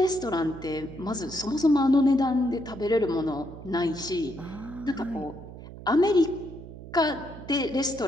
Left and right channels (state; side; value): noise; right; hum, 14 dB below the sound